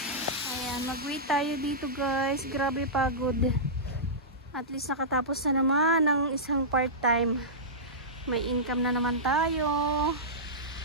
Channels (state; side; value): normal; both; correlation -0.16